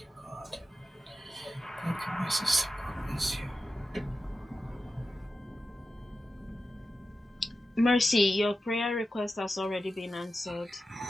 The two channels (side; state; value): both; normal; correlation 0.92